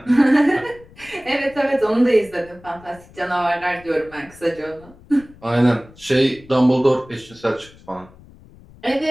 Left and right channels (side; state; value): left; noise; rumble, 24 dB below the sound